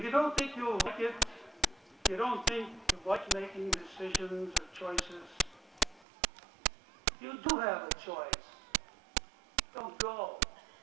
you don't think you'll like it, if you don't think you like making decisions or choices, you do have a choice. Don't go.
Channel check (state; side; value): drops out; left; at 6.1 s